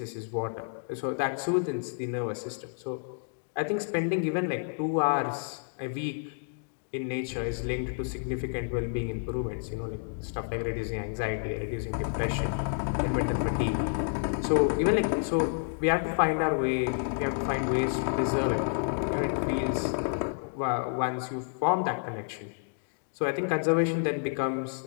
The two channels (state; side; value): silent; right; digital silence